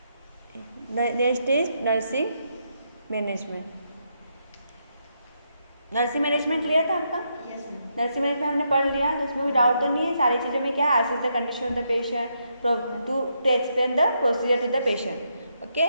Next is nursing management. Nursing management clear था आपका? नर्सिंग मैनेजमेंट हमने पढ़ लिया, तो उसमें कोई डाउट तो नहीं है. सारी चीज़ों में क्या है, assess the condition of the patient to explain the procedure to the patient.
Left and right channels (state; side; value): inverted; both; correlation -0.79